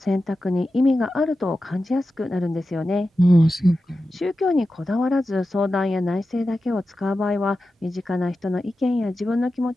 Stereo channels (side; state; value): both; normal; correlation 0.92